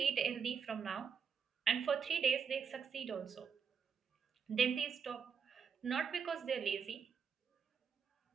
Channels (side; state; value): left; quieter; 6.6 dB